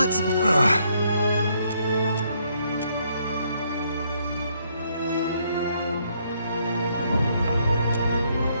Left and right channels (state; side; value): inverted; both; correlation -0.71